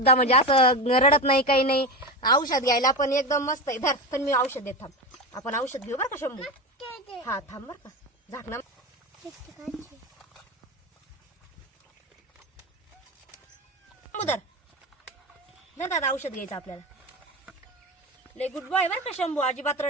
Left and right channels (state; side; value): normal; both; correlation 0.21